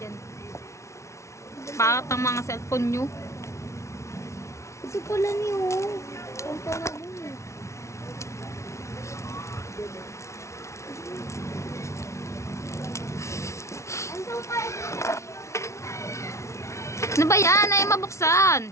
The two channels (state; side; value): late; right; 0.14 ms